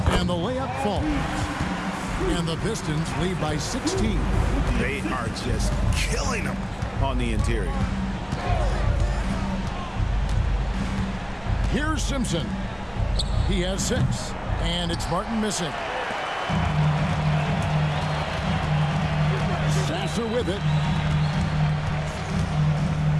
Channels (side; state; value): both; identical; correlation 1.00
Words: the layup falls. And the Pistons lead by 16. They are just killing them on the interior. Here's Simpson. He has 6. And it's Martin missing. Sasser with it.